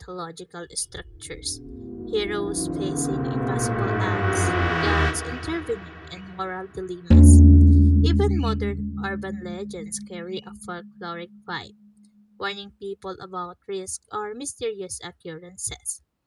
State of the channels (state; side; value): identical; both; correlation 1.00